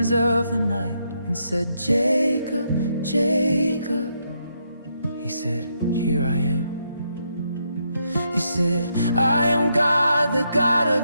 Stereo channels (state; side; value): inverted; both; correlation -0.78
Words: of the night and said, Jacob, Jacob. He said, here I am. He said, I am God, the God